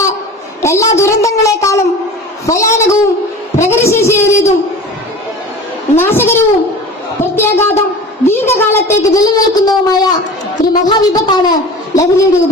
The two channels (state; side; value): normal; both; correlation 0.37